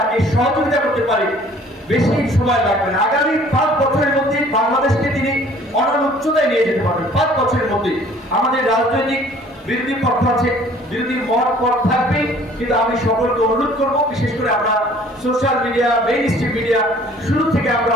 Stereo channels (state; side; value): normal; both; correlation 0.54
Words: সহযোগিতা করতে পারি, বেশি সময় লাগবে না। আগামী 5 বছরের মধ্যে বাংলাদেশকে তিনি অনন্য উচ্চতায় নিয়ে যেতে পারবেন। 5 বছরের মধ্যে আমাদের রাজনৈতিক বিরোধী পক্ষ আছে, বিরোধী মত পথ থাকবে, কিন্তু আমি সকলকে অনুরোধ করব, বিশেষ করে আমরা social media, main stream media শুরু থেকে আমরা